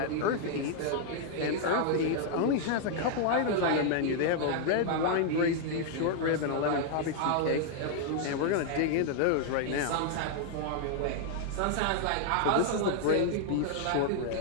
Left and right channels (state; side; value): different; both; correlation 0.00